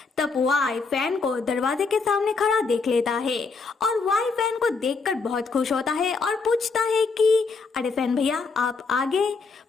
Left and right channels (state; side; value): quieter; right; 4.5 dB